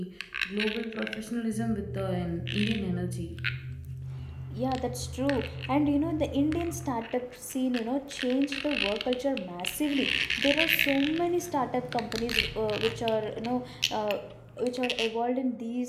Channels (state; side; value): identical; both; correlation 1.00